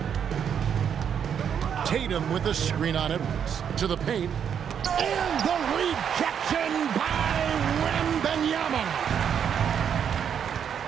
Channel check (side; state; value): left; quieter; 8.1 dB